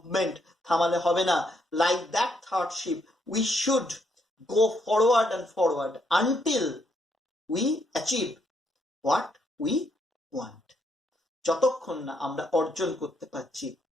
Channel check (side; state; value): both; normal; correlation 0.74